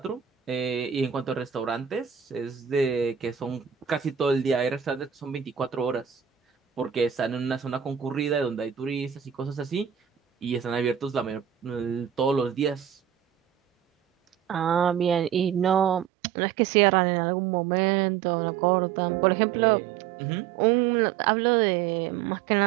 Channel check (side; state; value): left; drops out; at 16.1 s